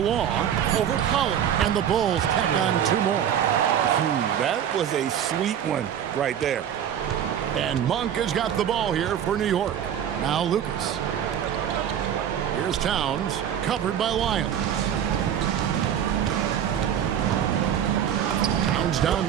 over Pollard. And the Bulls tack on 2 more. That was a sweet one right there. And Monk has got the ball here for New York. Now Lucas. Here's Towns, covered by Lyles. Towns down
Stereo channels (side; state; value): left; quieter; 9.5 dB